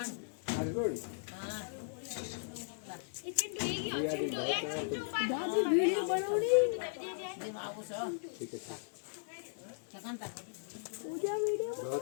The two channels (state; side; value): silent; right; digital silence